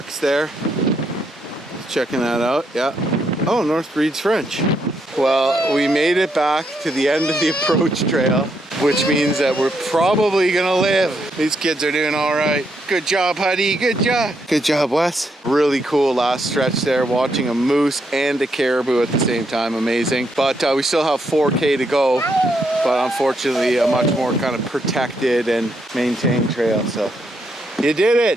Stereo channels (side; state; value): both; normal; correlation 0.77